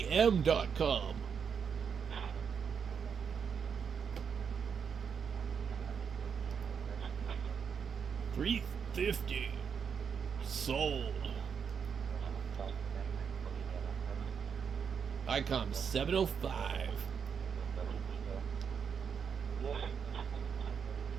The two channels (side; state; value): left; quieter; 6.7 dB